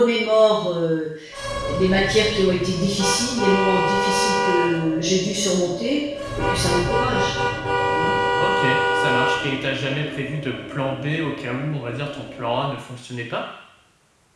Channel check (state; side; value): identical; both; correlation 1.00